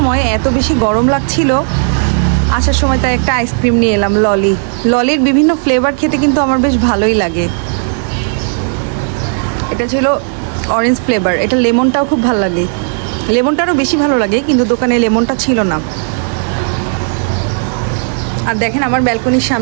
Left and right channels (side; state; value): left; silent; digital silence